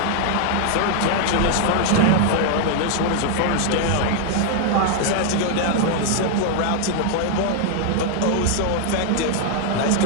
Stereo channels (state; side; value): different; both; correlation 0.00